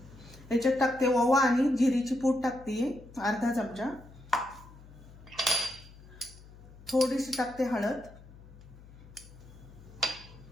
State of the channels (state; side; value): noise; left; hum, 20 dB below the sound